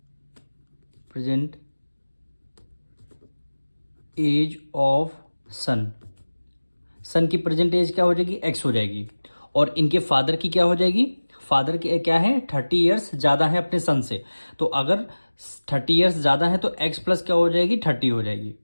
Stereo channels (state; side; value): inverted; both; correlation -1.00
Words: present age of son। Son की प्रेजेंट एज क्या हो जाएगी? एक्स हो जाएगी। और इनके फादर की क्या हो जाएगी? फादर की क्या है? 30 ईयर्स ज़्यादा है अपने सन से। तो अगर 30 ईयर्स ज़्यादा है तो एक्स प्लस क्या हो जाएगी? 30 हो जाएगी।